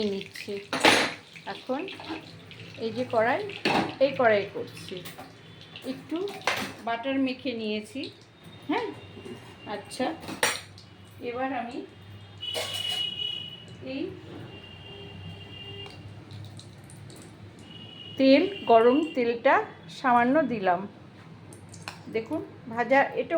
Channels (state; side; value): identical; both; correlation 1.00